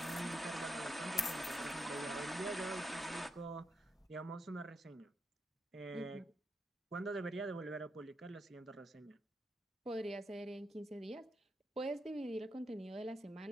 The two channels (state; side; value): normal; both; correlation 0.82